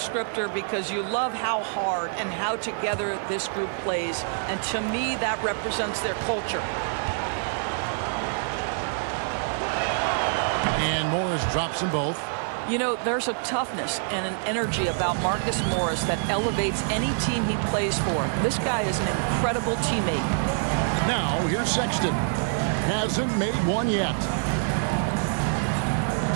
because you love how hard and how together this group plays. And to me, that represents their culture. And Morris drops them both. You know, there's a toughness and an energy about Marcus Morris that elevates any team he plays for. This guy is an incredible teammate. Now, here's Sexton. Hasn't made one yet.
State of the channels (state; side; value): silent; left; digital silence